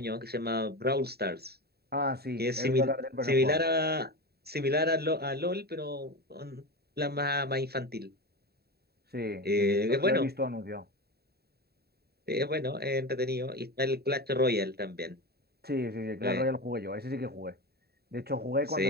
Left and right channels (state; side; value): late; left; 0.46 ms